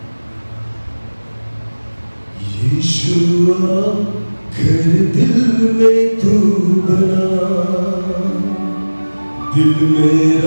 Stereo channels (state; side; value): inverted; both; correlation -1.00